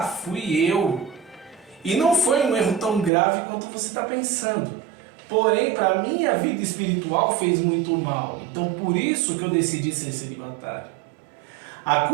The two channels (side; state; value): left; drops out; at 3.1 s